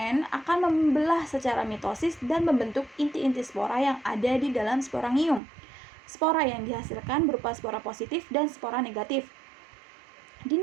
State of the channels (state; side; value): drops out; left; at 5.4 s